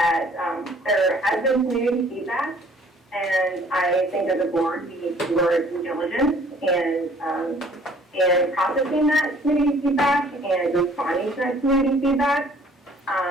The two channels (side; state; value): both; normal; correlation 0.56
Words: there has been community feedback, and I think as a board, we need to do our due diligence and processing that community feedback and responding to that community feedback,